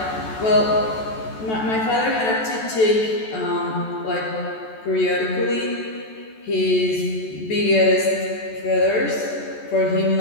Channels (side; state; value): right; late; 14 ms